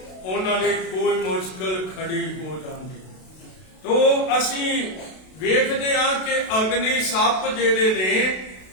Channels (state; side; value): late; right; 32 ms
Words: ਉਹਨਾਂ ਲਈ ਕੋਈ ਮੁਸ਼ਕਲ ਖੜੀ ਹੋ ਜਾਂਦੀ। ਤੋ ਅਸੀਂ ਵੇਖਦੇ ਹਾਂ ਕਿ ਅਗਨੀ ਸੱਪ ਜਿਹੜੇ ਨੇ